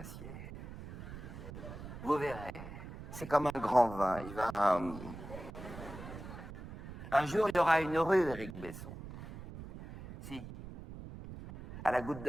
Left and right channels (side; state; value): right; noise; rumble, 12 dB below the sound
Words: Vous verrez, c'est comme un grand vin. Un jour, il y aura une rue, Éric Besson. Si, à la Goutte